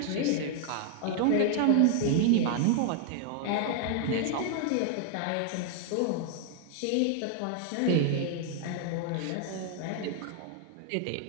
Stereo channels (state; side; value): different; both; correlation 0.00